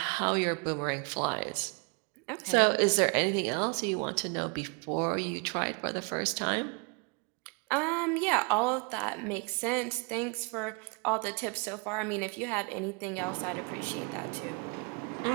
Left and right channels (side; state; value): left; quieter; 33.1 dB